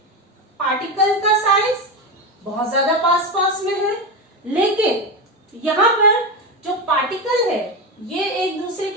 पार्टिकल का साइज बहुत ज्यादा पास पास में है, लेकिन यहाँ पर जो पार्टिकल है ये एक दूसरे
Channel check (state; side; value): normal; both; correlation 0.16